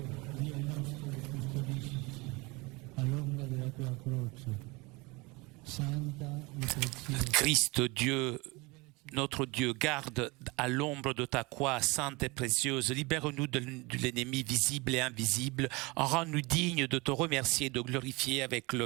Dio nostro, custodisci all'ombra della tua croce, santa e preziosa. Christ, Dieu, notre Dieu, garde à l'ombre de ta croix sainte et précieuse. Libère-nous de l'ennemi visible et invisible. Rends-nous dignes de te remercier et de glorifier avec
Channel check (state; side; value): quieter; left; 25.2 dB